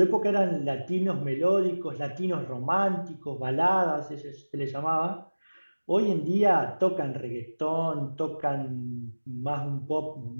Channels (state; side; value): inverted; both; correlation -1.00